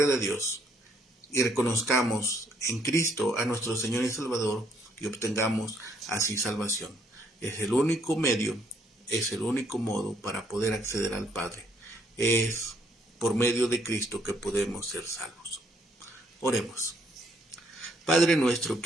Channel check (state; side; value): normal; both; correlation 0.69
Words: de Dios y reconozcamos en Cristo a nuestro Señor y Salvador y obtengamos así salvación. Es el único medio, es el único modo para poder acceder al Padre. Es por medio de Cristo que podemos ser salvos. Oremos. Padre nuestro